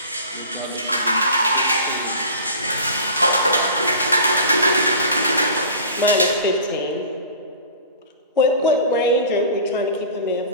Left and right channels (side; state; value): both; inverted; correlation -0.40